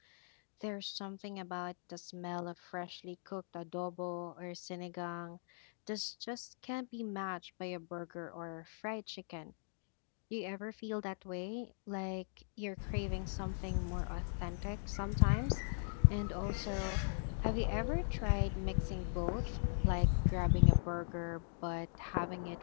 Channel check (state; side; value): silent; right; digital silence